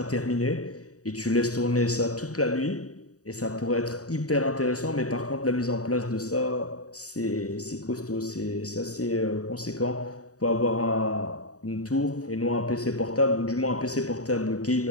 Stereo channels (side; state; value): right; late; 0.66 ms